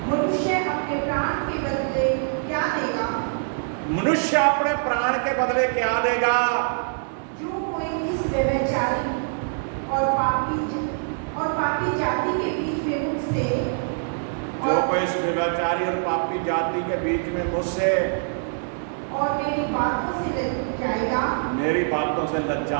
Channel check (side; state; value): left; silent; digital silence